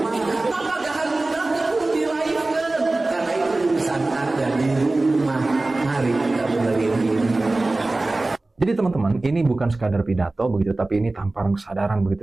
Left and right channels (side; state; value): left; quieter; 3.0 dB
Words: Maka jangan mudah perlu dilahirkan, karena itu urusan Anda di rumah. Mari kita benerin ini. Jadi teman-teman, ini bukan sekadar pidato begitu, tapi ini tamparan kesadaran